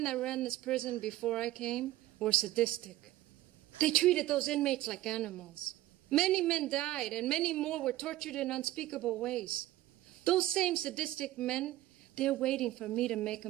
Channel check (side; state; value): left; quieter; 15.9 dB